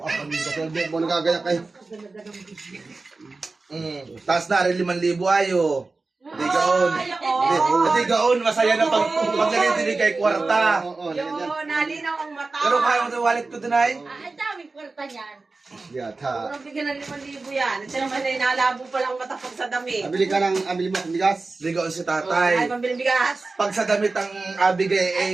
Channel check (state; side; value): quieter; left; 3.7 dB